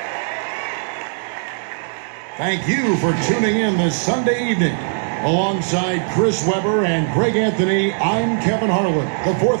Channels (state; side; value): silent; left; digital silence